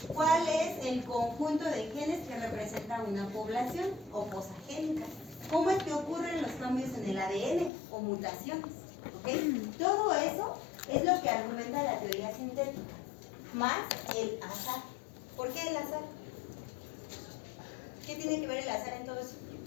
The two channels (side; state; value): right; drops out; at 7.7 s